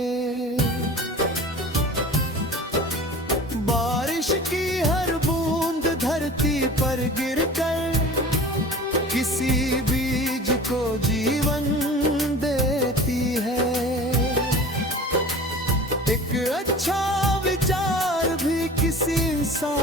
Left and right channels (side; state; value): both; normal; correlation 0.40